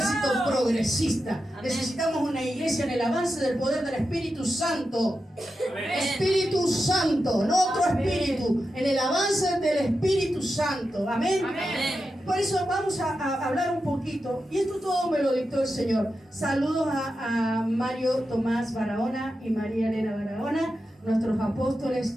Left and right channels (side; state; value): both; normal; correlation 0.89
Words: progresista. Necesitamos una iglesia en el avance del poder del Espíritu Santo. Espíritu Santo, no otro espíritu, en el avance del Espíritu Santo, amén. Por eso vamos a hablar un poquito, y esto todo me lo dictó el Señor. Saludos a Mario Tomás Barahona y María Elena Barahona, nuestros